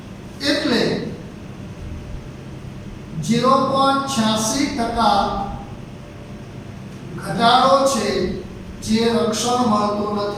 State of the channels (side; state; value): both; identical; correlation 1.00